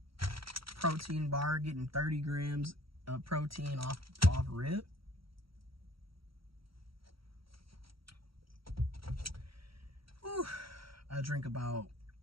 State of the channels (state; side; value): late; left; 0.75 ms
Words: Protein bar, getting 30 grams of protein off rip. Whew. I drink about